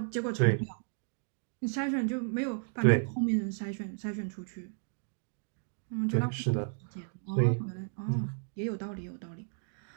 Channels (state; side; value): silent; left; digital silence